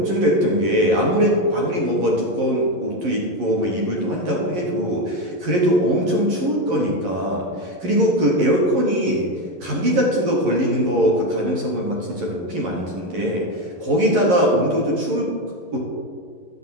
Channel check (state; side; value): late; left; 11 ms